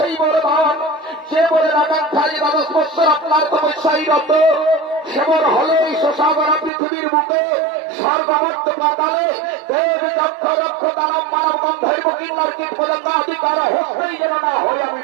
বরদান, যে বরের আকাঙ্ক্ষায় দাদা স্পষ্ট আপনার তপস্যায় রত, সে বর হলো এই শশাগরা পৃথিবীর বুকে সর্বমত্ত পাতালে দেব দক্ষ রক্ষ দানব মানব গন্ধর্ব কিন্নর কীট পতঙ্গ আদি কারো হস্তেই যেন না হয় আমি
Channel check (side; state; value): left; drops out; at 6.7 s